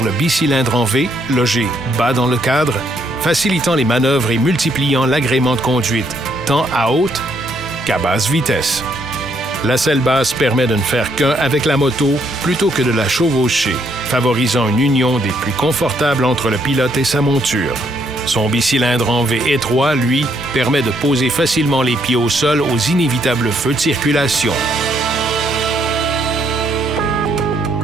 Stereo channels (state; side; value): normal; both; correlation 0.71